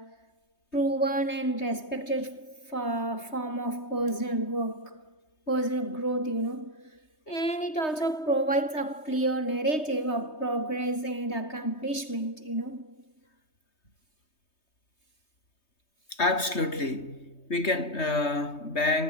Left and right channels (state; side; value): late; right; 3.2 ms